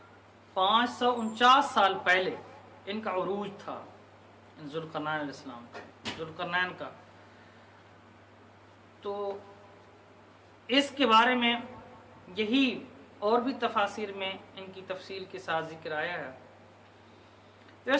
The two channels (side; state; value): both; identical; correlation 1.00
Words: 549 سال پہلے ان کا عروج تھا، ذوالقرنین علیہ السلام کا، ذوالقرنین کا۔ تو اس کے بارے میں یہی اور بھی تفاسیر میں ان کی تفصیل کے ساتھ ذکر آیا ہے۔ تو